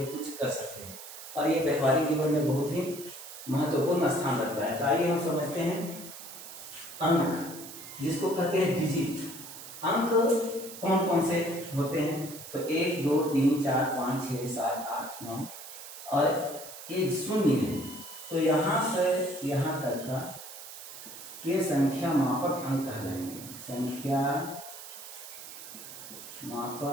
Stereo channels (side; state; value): right; noise; hiss, 13 dB below the sound